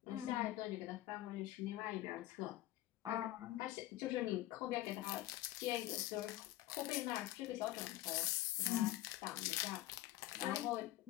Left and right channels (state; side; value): quieter; right; 15.7 dB